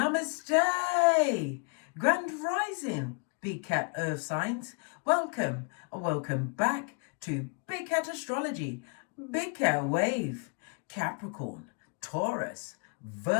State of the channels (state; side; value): quieter; right; 40.0 dB